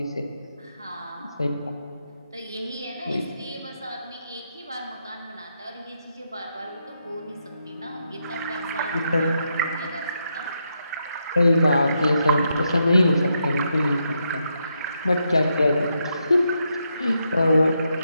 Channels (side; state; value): both; inverted; correlation -0.81